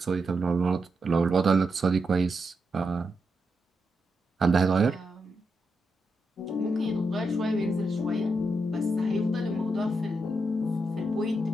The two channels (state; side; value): normal; both; correlation 0.84